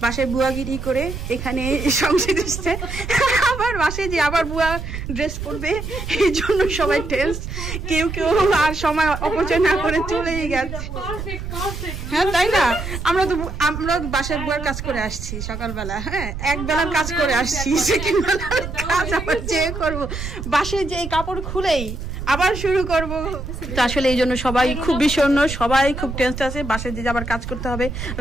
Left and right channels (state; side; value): noise; right; rumble, 7 dB below the sound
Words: বাসায় বুয়াগিরি করে এখানে সংসার এসছে, আবার বাসায় যে আবার বুয়া ড্রেস পরবে, এই জন্য সবাই টেস্ট। কেউ আর সময় অপচয় না করে চলেই গেছে। হ্যাঁ, তাই না? আমরা বাসায় বুয়ার কাজ করে আসছি সকালবেলা। হ্যাঁ, এক বেলার কাজ করে আসছি, সেকেন্ড বেলার কাজ আবার যে করবো। বাসায় যে কাপড় খুলেই আবার শুরু করব। তো আসলে এই জন্য সবাই খুব বিষণ্ণ, সবাই খুব টেনশন আছে। বাসায় যে আবার কাজ করতে হবে,